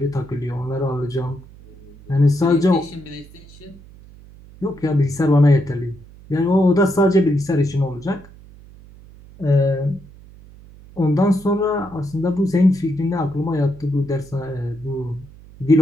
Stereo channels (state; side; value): noise; right; hum, 21 dB below the sound